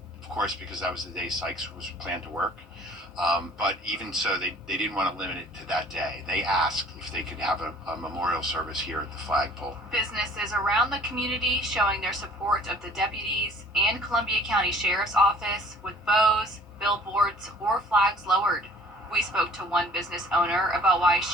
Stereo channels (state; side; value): normal; both; correlation 0.52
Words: of course, because that was the day Sykes was planned to work. But even so, they didn't want to limit it to that day. They asked if they could have a memorial service here at the flagpole. Businesses around the community showing their support of the deputies and Columbia County Sheriff's Office with bows, billboards, or flags lowered. We spoke to one business owner about why